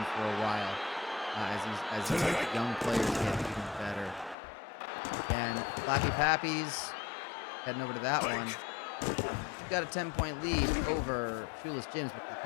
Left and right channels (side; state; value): right; drops out; at 4.4 s